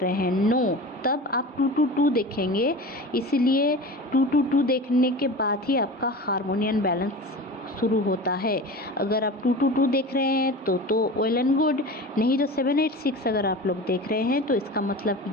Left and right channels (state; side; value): normal; both; correlation 0.33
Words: हैं, नो। तब आप 222 देखेंगे, इसलिए 222 देखने के बाद ही आपका हार्मोनी एंड बैलेंस शुरू होता है। अगर आप 222 देख रहे हैं तो वेल एंड गुड, नहीं तो 786 अगर आप लोग देख रहे हैं तो इसका